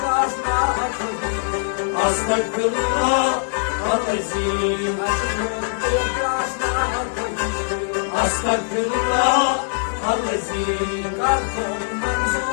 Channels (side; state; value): right; silent; 64 dB below the other